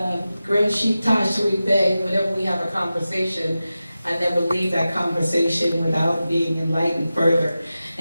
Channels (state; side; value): inverted; both; correlation -0.94